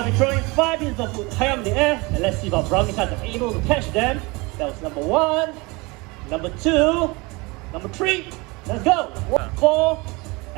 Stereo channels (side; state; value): left; quieter; 25.4 dB